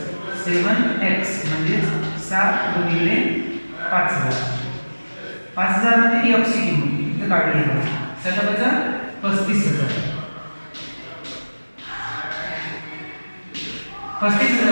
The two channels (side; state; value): both; inverted; correlation -1.00